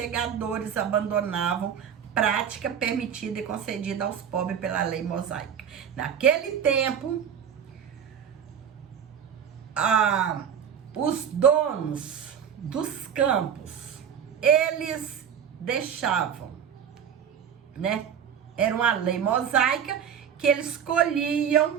abandonavam, prática permitida e concedida aos pobres pela lei mosaica. Naquele tempo, os donos dos campos, eles deixavam, né? Era uma lei mosaica que eles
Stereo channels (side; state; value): left; quieter; 8.2 dB